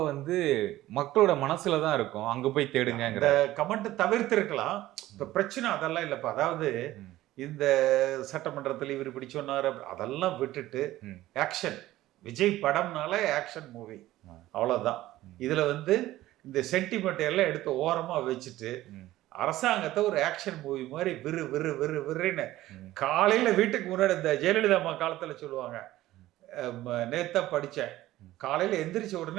வந்து மக்களோட மனசுல தான் இருக்கும், அங்க போய் தேடுங்க. இந்த கமெண்ட் தவிர்த்திருக்கலாம். இப்ப பிரச்சனை அதெல்லாம் இல்லப்பா. அதாவது இந்த சட்டமன்றத்தில் இவர் இப்படி சொன்னார் அதெல்லாம் விட்டுட்டு ஆக்ஷன். விஜய் படம்னால ஆக்ஷன் மூவி, அவ்வளவுதான். இதுல வந்து இந்த சென்டிமெண்ட் எல்லாம் எடுத்து ஓரமா வச்சுட்டு அரசாங்கத்தை ஒரு ஆக்ஷன் மூவி மாதிரி விறு விறு விறு விறுன்னு காலையில வீட்டுக்கு முன்னாடி இந்த ஜெயலலிதா அம்மா காலத்துல சொல்லுவாங்க, நேத்தா படிச்சேன், காலையில எந்திரிச்ச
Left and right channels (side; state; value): left; quieter; 15.7 dB